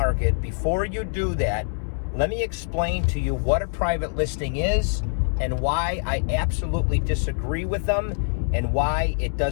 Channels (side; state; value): right; silent; 62 dB below the other